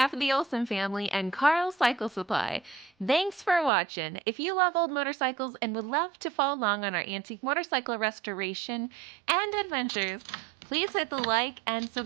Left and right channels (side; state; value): left; drops out; at 3.7 s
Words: of the Olsen family and Carl Cycle Supply, thanks for watching. If you love old motorcycles and would love to follow along on our antique motorcycle restoration and adventures, please hit the like and